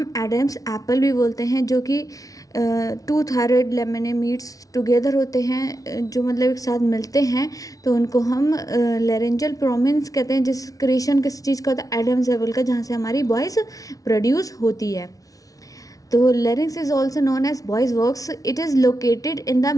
एडम्स एप्पल भी बोलते हैं, जो कि टू थायराइड लेमिने मीट्स टुगेदर होते हैं, जो मतलब एक साथ मिलते हैं, तो उनको हम लैरिंजियल प्रोमिनेंस कहते हैं। जिस क्रिएशन किस चीज़ का होता है? एडम्स एप्पल का, जहाँ से हमारी वॉइस प्रोड्यूस होती है। तो larynx is also known as voice box. It is located in the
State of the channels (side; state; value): right; late; 0.18 ms